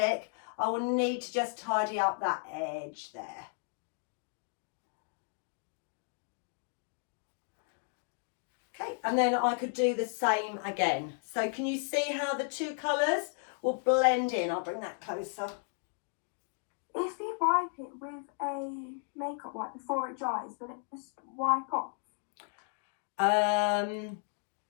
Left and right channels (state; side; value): silent; right; 55 dB below the other